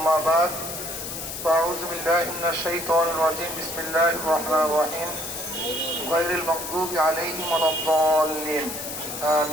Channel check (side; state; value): left; noise; hiss, 7 dB below the sound